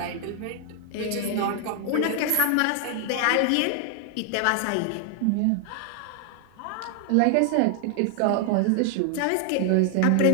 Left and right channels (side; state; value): both; different; correlation 0.00